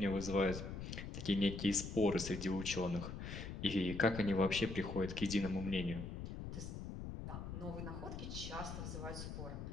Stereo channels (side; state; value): left; noise; rumble, 7 dB below the sound